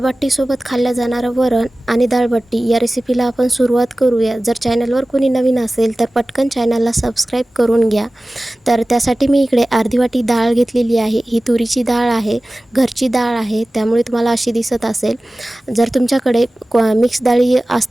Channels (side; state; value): both; normal; correlation 0.97